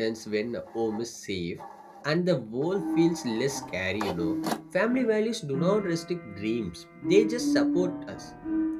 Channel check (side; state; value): both; identical; correlation 1.00